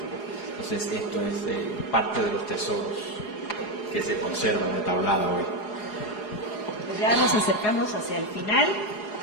Entonces esto es parte de los tesoros que se conservan de tablada hoy. Pues ya nos acercamos hacia el final,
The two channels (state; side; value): late; right; 4.8 ms